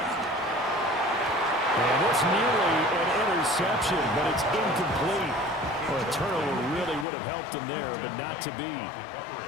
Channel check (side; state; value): right; drops out; at 7.1 s